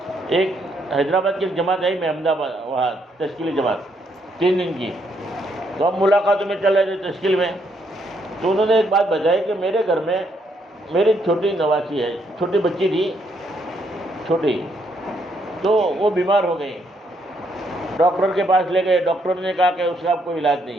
ایک حیدرآباد کی ایک جماعت آئی، میں احمدآباد وہاں تشکیلی جماعت 3 دن کی، تو ہم ملاقاتوں میں چل رہے تھے تشکیل میں، تو انہوں نے ایک بات بتائی کہ میرے گھر میں میری چھوٹی نواسی ہے، چھوٹی بچی تھی چھوٹی، تو وہ بیمار ہو گئی، ڈاکٹر کے پاس لے گئے، ڈاکٹر نے کہا کہ اس کا کوئی علاج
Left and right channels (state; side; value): normal; both; correlation 0.73